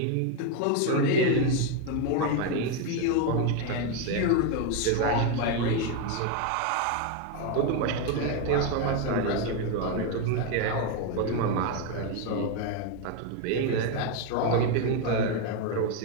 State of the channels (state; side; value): different; both; correlation 0.02